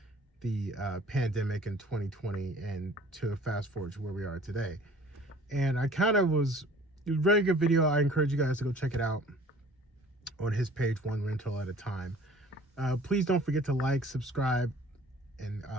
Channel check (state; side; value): normal; both; correlation 0.50